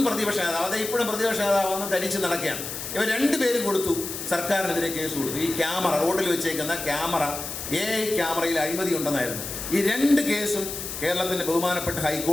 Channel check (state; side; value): noise; left; hiss, 7 dB below the sound